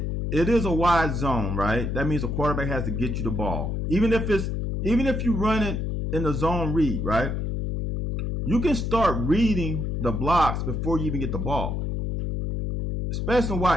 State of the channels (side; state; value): left; noise; hum, 1 dB below the sound